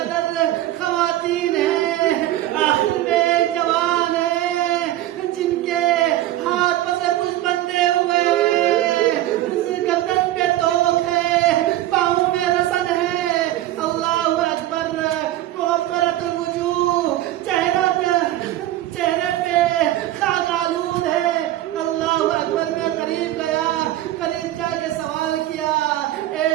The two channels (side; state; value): left; quieter; 14.4 dB